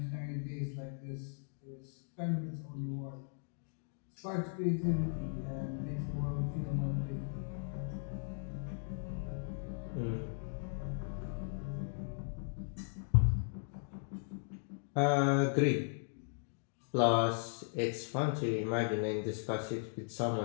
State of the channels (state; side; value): silent; right; digital silence